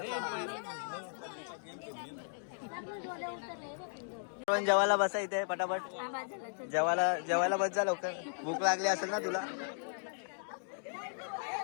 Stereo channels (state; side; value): silent; right; digital silence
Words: पण जेवायला बसा इथे पटापट. जेवायला बस जा लवकर. भूक लागली असेल ना तुला.